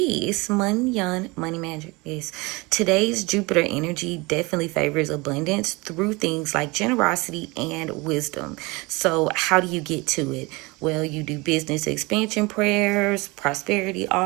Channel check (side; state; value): left; quieter; 24.9 dB